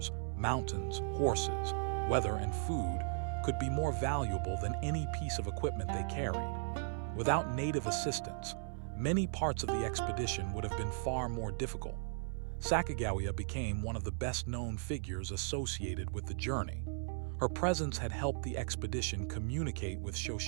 mountains, horses, weather, and food could be more valuable than any piece of equipment they carried. Without native assistance, many parts of the expedition would have been far more difficult. Sacagawea became one of the best-known figures associated with the journey. Her presence had helped the expedition communicate with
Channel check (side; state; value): left; silent; 53 dB below the other